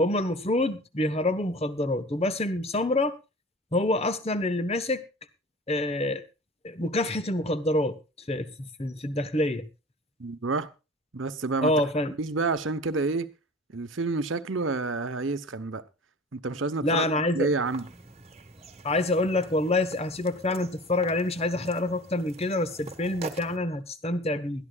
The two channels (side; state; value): both; normal; correlation 0.40